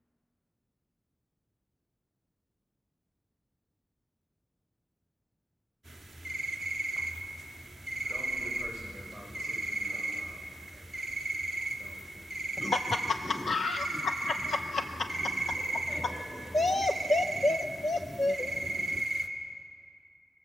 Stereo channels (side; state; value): both; normal; correlation 0.83